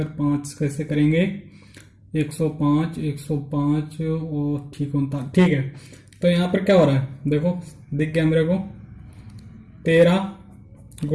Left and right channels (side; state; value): both; identical; correlation 1.00